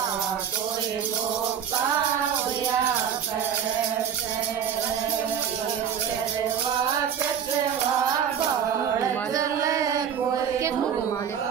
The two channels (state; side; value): quieter; left; 8.3 dB